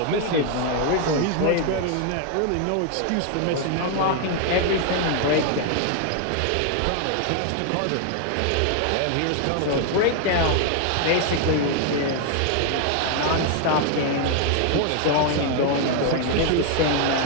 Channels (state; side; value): different; both; correlation 0.00